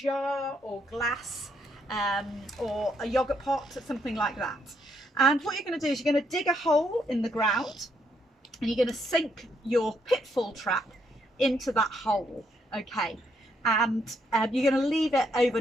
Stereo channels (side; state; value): both; normal; correlation 0.74